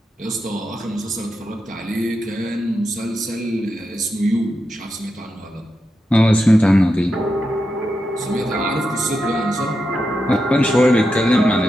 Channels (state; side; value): normal; both; correlation 0.87